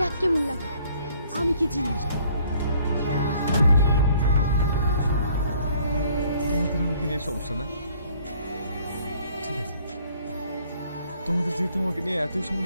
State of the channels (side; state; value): both; inverted; correlation -0.60